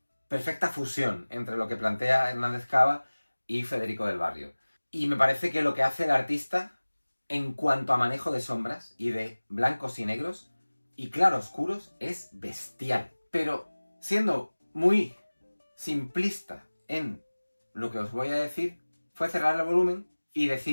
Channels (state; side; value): inverted; both; correlation -1.00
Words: perfecta fusión entre lo que plantea Hernández Cava y Federico del Barrio. Y me parece que lo que hace el artista en cuanto a manejo de sombras y de blancos y negros y claroscuros es bestial. Pero siendo muy simplista en lo que os voy a decir, fue cerrar el volumen y